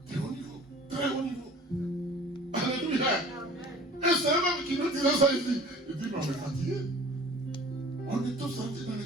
très haut niveau, très haut niveau. Alléluia. Et c'est eux-mêmes qui nous disent ça ici. Ils disent mais on est fatigué. On est tous sortis dans les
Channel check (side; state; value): both; normal; correlation 0.46